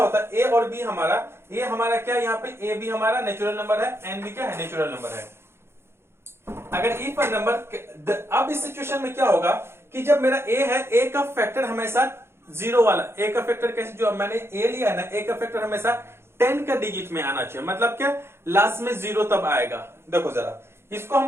है, a और b हमारा, a हमारा क्या यहाँ पे a b हमारा नेचुरल नंबर है, n b क्या है नेचुरल नंबर है। अगर इफ पर नंबर, अब इस सिचुएशन में क्या होगा कि जब मेरा a है, a का फैक्टर हमेशा 0 वाला, a का फैक्टर कैसे, जो मैंने a लिया है ना, a का फैक्टर हमेशा 10 का डिजिट में आना चाहिए। मतलब क्या, लास्ट में 0 तब आएगा। देखो जरा इसको हम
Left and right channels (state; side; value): late; left; 0.12 ms